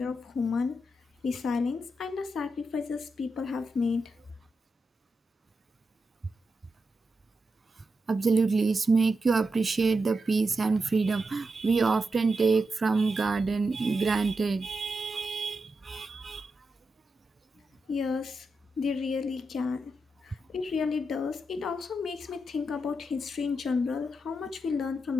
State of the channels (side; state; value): both; normal; correlation 0.87